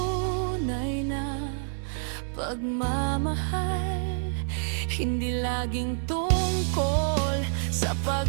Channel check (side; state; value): left; silent; digital silence